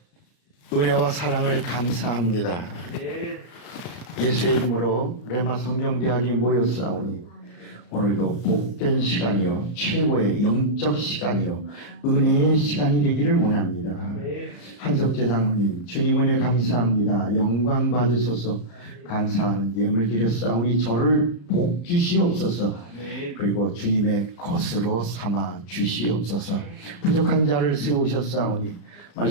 은혜와 사랑을 감사합니다. 예수의 이름으로 레마 성경대학이 모였사오니 오늘도 복된 시간이요, 최고의 영적 시간이요, 은혜의 시간이 되기를 원합니다. 한석재 장로님, 주님 은혜 감사합니다. 영광 받으소서. 감사하는 예물 드렸사오니 저를 복 주시옵소서. 그리고 주님의 것으로 삼아 주시옵소서. 부족한 자를 세우셨사오니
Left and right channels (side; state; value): right; late; 34 ms